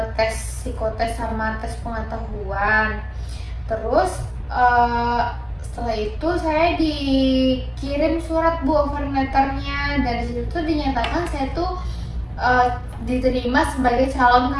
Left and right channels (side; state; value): both; identical; correlation 1.00